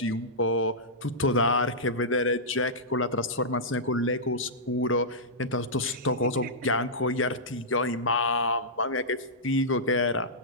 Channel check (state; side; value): normal; both; correlation -0.13